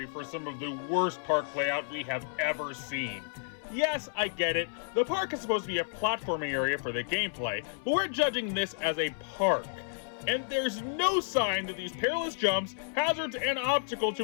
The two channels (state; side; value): silent; right; 57 dB below the other